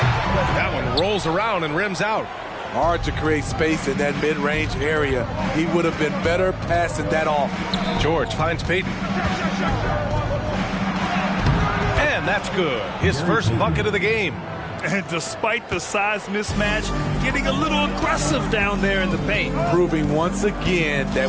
That one rolls around and rims out. Hard to create space in that mid-range area. He would have been better passing that off. George finds Payton. And that's good. His first bucket of the game. And despite the size mismatch, getting a little aggressive down there in the paint. Proving once again that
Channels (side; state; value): both; identical; correlation 1.00